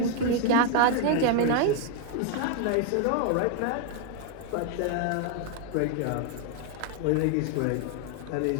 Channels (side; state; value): both; different; correlation 0.00